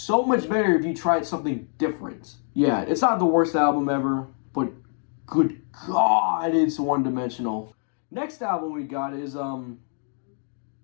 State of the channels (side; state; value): right; silent; 56 dB below the other